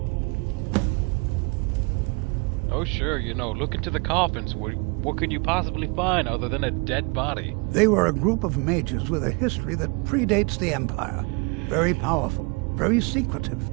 Oh sure, you know, look into the coffins. What could you possibly find other than a dead body? They were a group of mages with a history that predates the Empire. Very powerful, very secretive.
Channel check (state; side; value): quieter; left; 30.4 dB